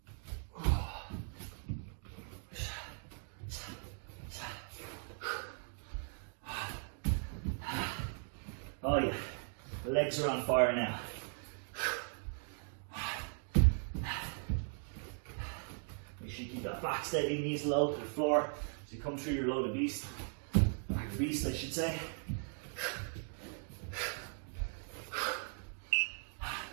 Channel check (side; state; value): left; silent; 52 dB below the other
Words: Oh yeah, the legs are on fire now. Make sure you keep that back steady, knees low to the floor as you come through your load of beast. Back of beast, I should say.